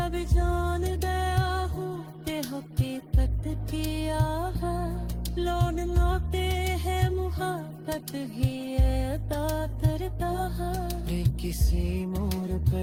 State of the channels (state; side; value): identical; both; correlation 1.00